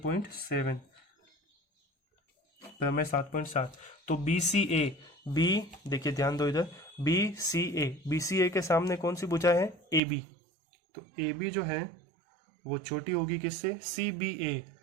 प्रमेय 7.7। तो BCA, B देखिए ध्यान दो इधर, BCA के सामने कौन सी भुजा है? AB। तो AB जो है वो छोटी होगी किससे? CBA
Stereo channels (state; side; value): drops out; left; at 10.0 s